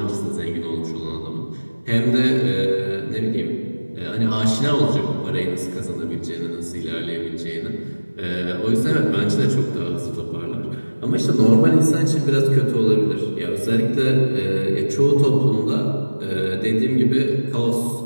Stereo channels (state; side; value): inverted; both; correlation -1.00